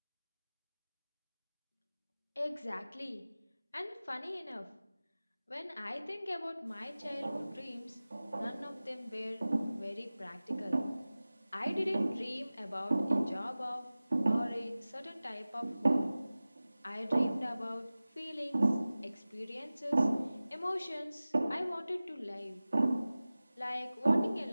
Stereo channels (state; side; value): inverted; both; correlation -0.97